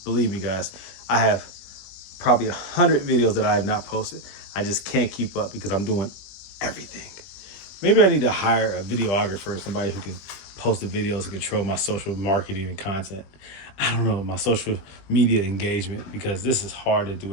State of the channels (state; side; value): late; right; 20 ms